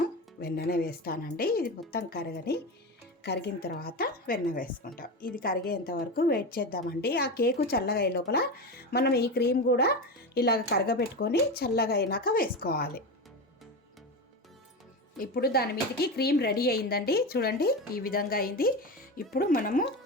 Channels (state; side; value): normal; both; correlation 0.21